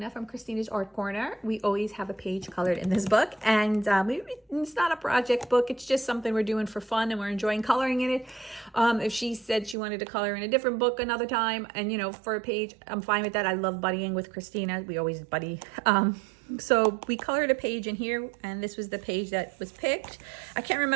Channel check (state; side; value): drops out; left; at 9.8 s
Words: from Christina's Art Corner. We always have a page colored in this book, and it's not a project book, it's just something we're doing for fun and we're enjoying coloring in it. If she said she wanted to color in a different book another time, and you know, for a page, I'm fine with that. I love buddying with Christina. We always buddy. So we colored a page in here, and this was the page that was picked. I can't